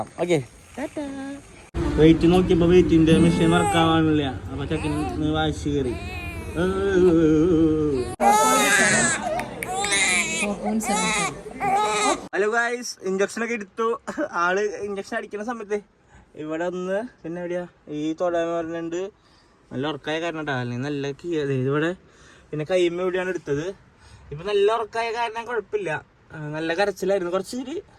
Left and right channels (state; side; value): identical; both; correlation 1.00